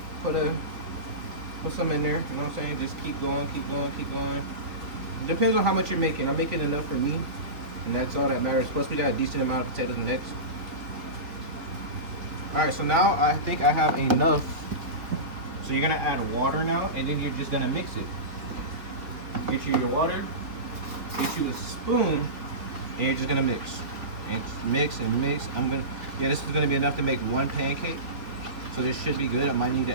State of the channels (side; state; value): left; late; 3.3 ms